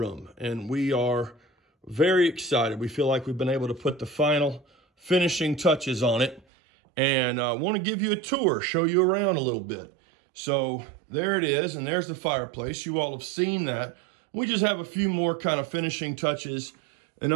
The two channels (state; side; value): drops out; left; at 6.5 s